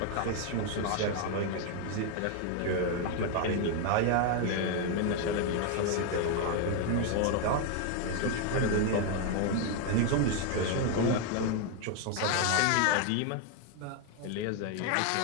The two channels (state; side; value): different; both; correlation 0.01